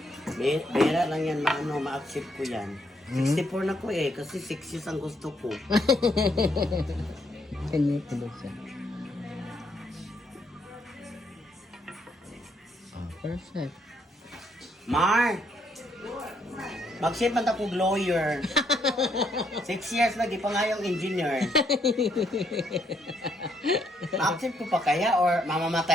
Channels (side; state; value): both; normal; correlation 0.73